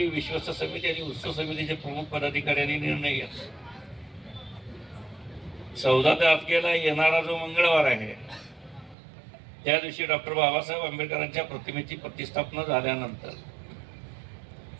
विश्वस्त समिती आणि उत्सव समितीचे प्रमुख पदाधिकाऱ्यांनी निर्णय घेतला. 14 तारखेला येणारा जो मंगळवार आहे त्या दिवशी डॉक्टर बाबासाहेब आंबेडकरांच्या प्रतिमेची प्रतिष्ठापना झाल्यानंतर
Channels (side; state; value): left; drops out; at 9.0 s